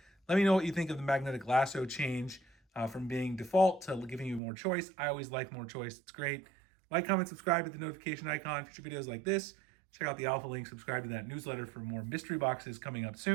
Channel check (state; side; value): drops out; left; at 4.4 s